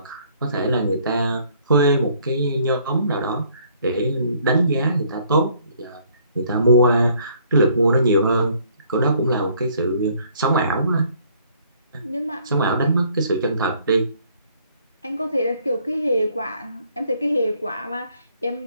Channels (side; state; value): both; inverted; correlation -0.62